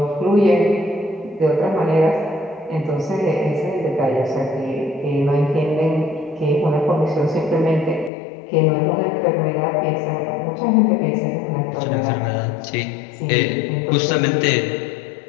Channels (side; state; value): right; drops out; at 8.1 s